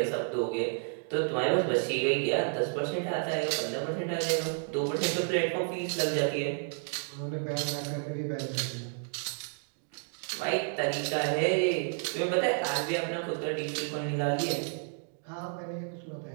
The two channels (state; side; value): silent; left; 57 dB below the other